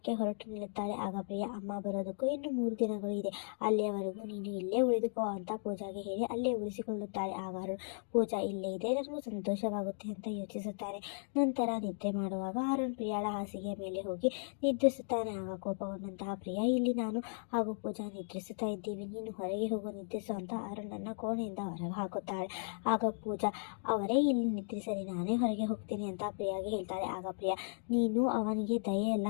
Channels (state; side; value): silent; right; digital silence